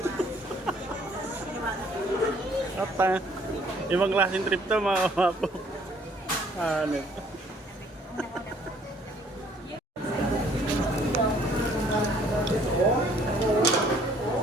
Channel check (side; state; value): both; normal; correlation 0.61